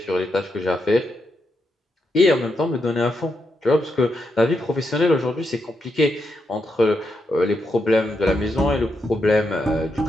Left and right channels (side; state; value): both; normal; correlation 0.83